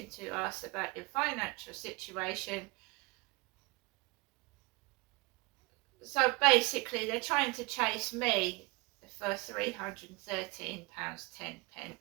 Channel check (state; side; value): quieter; left; 26.5 dB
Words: to us about your financial situation. So basically, they're trying to chase me for £313.10.